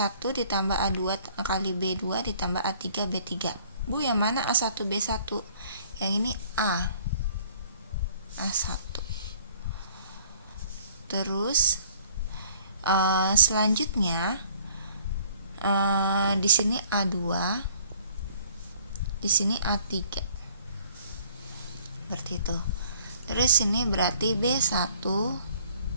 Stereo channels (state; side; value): inverted; both; correlation -0.57